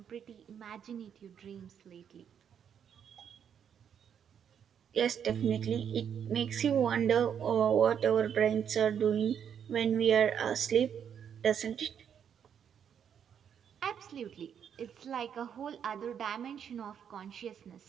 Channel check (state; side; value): quieter; left; 8.3 dB